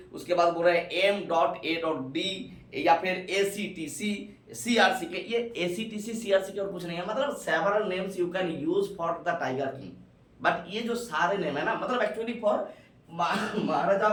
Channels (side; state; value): both; identical; correlation 1.00